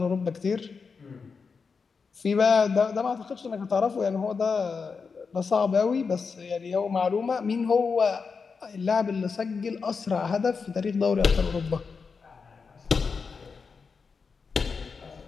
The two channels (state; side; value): quieter; right; 5.2 dB